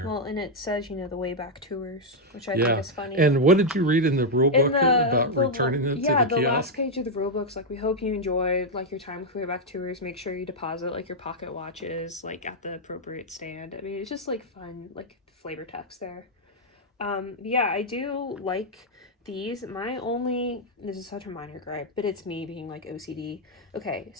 Well, and it says, you know, the way back tours, which I think is funny. And what did you read in the rule book about returning it to the kiosk? Yeah, the last page of the rule book's like, we hope you enjoyed, like, your time with way back tours. Make sure you deposit, like, your pocket watches, like, at the appropriate stand. I mean, it's just, like, fun, like, flavor text there. Yeah, I do like these. This is such a minor gripe, but it's me being like OCD. Okay,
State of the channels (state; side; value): normal; both; correlation -0.01